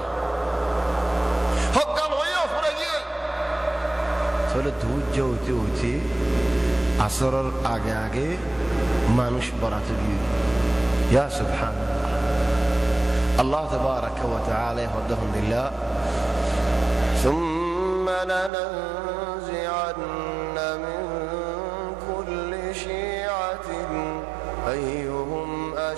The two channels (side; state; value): left; drops out; at 18.5 s